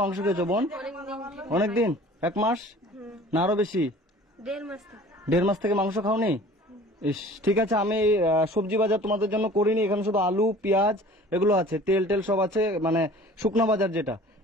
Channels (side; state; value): both; normal; correlation 0.46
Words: মাংস খেয়েছো বোন? অনেকদিন, 1 মাস না আরো বেশি? 1.5 মাস থেকে। 1.5 মাস থেকে মাংস খাওনি? ইস, ঠিক আছে, আমি সবজি বাজার তোমাদের জন্য করিনি। এখানে শুধু আলু পেঁয়াজ এগুলো আছে, তেল টেল সব আছে, মানে শুকনো বাজার যেটা।